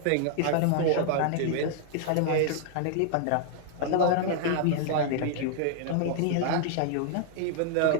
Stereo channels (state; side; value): different; both; correlation 0.00